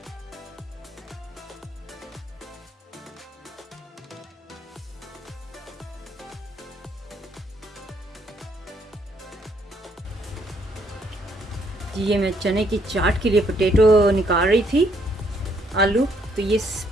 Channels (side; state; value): both; normal; correlation 0.70